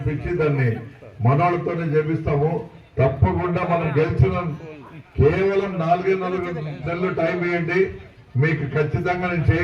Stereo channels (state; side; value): identical; both; correlation 1.00